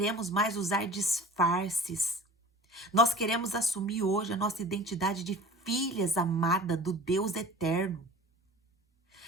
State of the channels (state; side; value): normal; both; correlation 0.41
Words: mais usar disfarces. Nós queremos assumir hoje a nossa identidade de filhas amadas do Deus eterno.